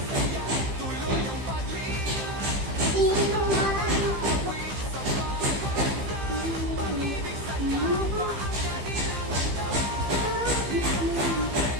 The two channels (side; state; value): left; late; 15 ms